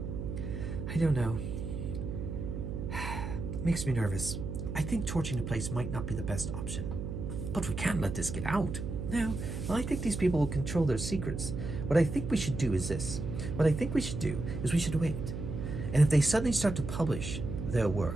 I don't know. Makes me nervous. I think torching the place might not be the best option. But we can't let this get out. No. Well, I think these people will control their secrets. What I think we should do is this. What I think we should do is we should wait. And if they suddenly start to publish their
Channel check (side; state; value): right; noise; hum, 5 dB below the sound